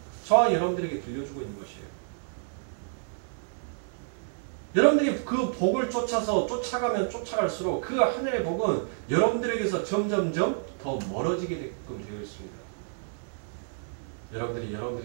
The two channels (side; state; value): left; silent; digital silence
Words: 저와 여러분들에게 들려주고 있는 것이에요. 여러분들이 그 복을 쫓아서 쫓아가면 쫓아갈수록 그 하늘의 복은 여러분들에게서 점점점 더 멀어지게 되어 있습니다. 여러분들이